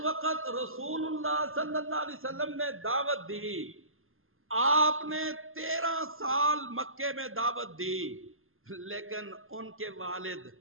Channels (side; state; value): left; late; 0.60 ms